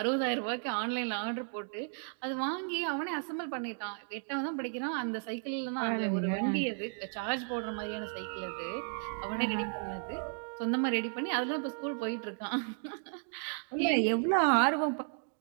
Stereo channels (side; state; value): left; silent; 55 dB below the other